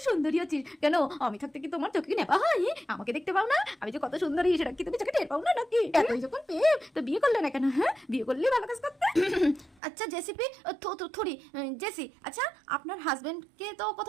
সুন্দরী আছিস। কেন আমি থাকতে কি তোমার চোখে নেপা হয়? আমাকে দেখতে পাও না আমি যে কত সুন্দরী, সেটা কি তুমি চোখে টের পাও না নাকি? এতই যখন পেয়ে তো বিয়ে করলে না কেন? হ্যাঁ, বিয়ে করলে ভালো কাজ করতে। আচ্ছা জেসিপি, থরি জেসি, আচ্ছা আপনার হাজবেন্ডকে তো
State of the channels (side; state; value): left; drops out; at 9.8 s